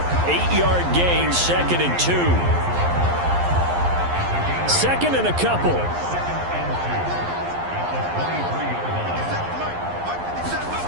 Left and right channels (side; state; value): left; late; 11 ms